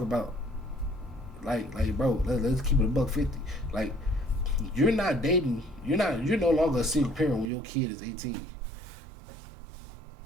about like bro, let's keep it a $150. Like you're not dating, you're no longer a single parent when your kid is 18.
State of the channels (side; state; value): left; drops out; at 7.5 s